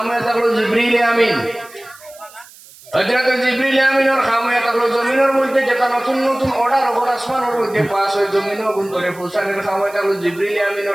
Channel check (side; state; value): right; noise; hiss, 22 dB below the sound